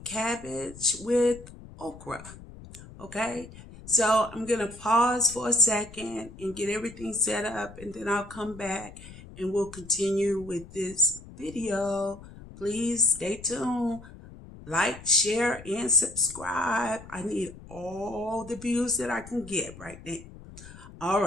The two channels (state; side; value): noise; left; rumble, 17 dB below the sound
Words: cabbage with okra. Okay, so I'm gonna pause for a second and get everything set up, and then I'll come back and we'll continue with this video. Please stay tuned. Like, share, and subscribe. I need all the views that I can get right now. All